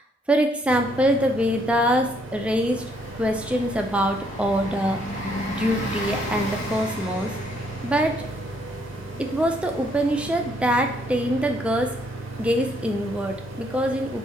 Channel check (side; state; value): both; normal; correlation 0.69